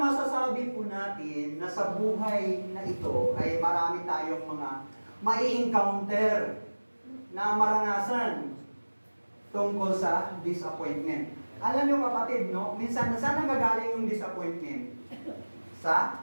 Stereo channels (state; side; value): inverted; both; correlation -1.00